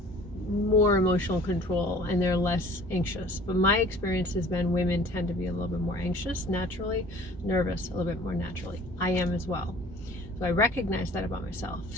more emotional control and they're less anxious. But my experience has been women tend to be a little bit more anxious naturally, nervous a little bit more naturally. I am as well. So I recognize that about myself.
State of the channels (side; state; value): both; normal; correlation 0.49